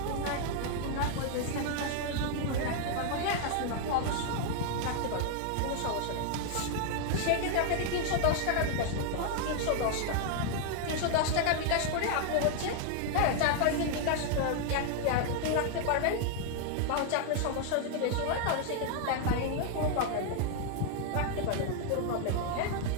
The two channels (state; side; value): different; both; correlation 0.00